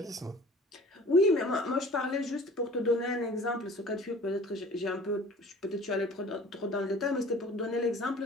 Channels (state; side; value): normal; both; correlation 0.46